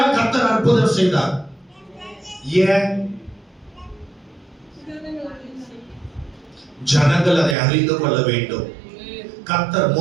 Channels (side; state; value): left; drops out; at 7.6 s